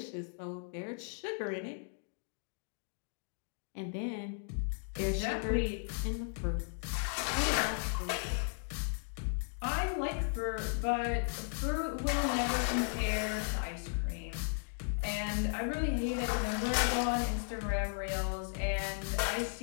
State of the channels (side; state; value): right; silent; digital silence